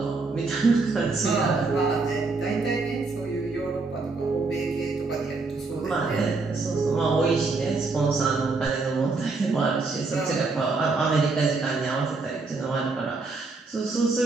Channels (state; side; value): quieter; left; 3.9 dB